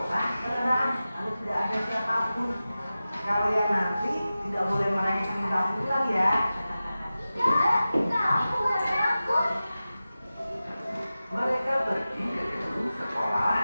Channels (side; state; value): both; inverted; correlation -0.95